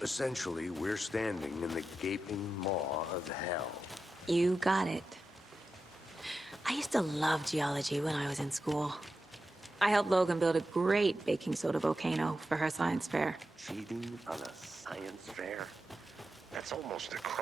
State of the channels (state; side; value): normal; both; correlation 0.90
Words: essentially, we're standing in the gaping maw of hell. You got it. I used to love geology when I was in school. I helped Logan build a great baking soda volcano for her science fair. Cheating on a science fair? That's almost a